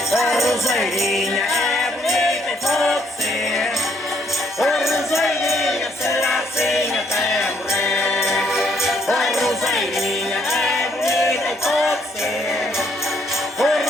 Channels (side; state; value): both; normal; correlation 0.69